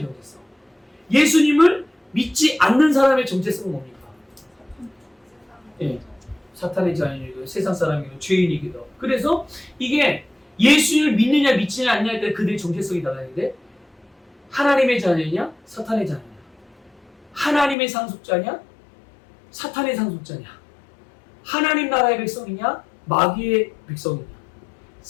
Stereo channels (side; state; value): right; drops out; at 17.8 s